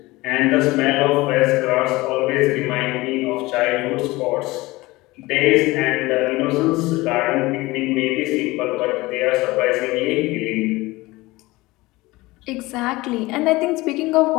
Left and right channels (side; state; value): right; quieter; 20.6 dB